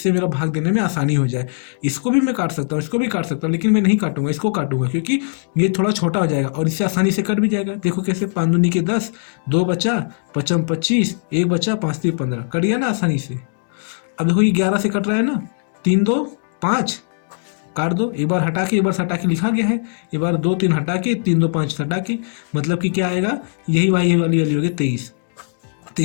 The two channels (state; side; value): silent; right; digital silence